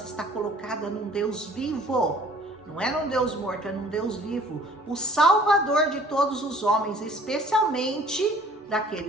está colocada num Deus vivo. Não é num Deus morto, é num Deus vivo, o Salvador de todos os homens, especialmente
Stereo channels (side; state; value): both; normal; correlation 0.53